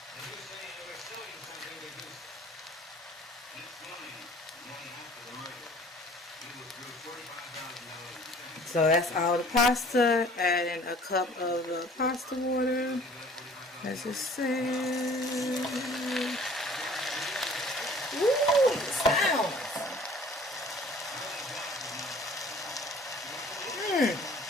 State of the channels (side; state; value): both; normal; correlation 0.51